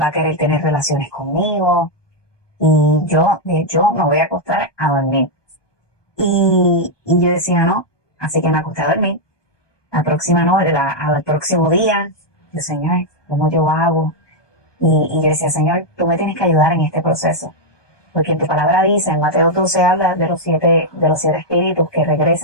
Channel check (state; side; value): late; right; 1.2 ms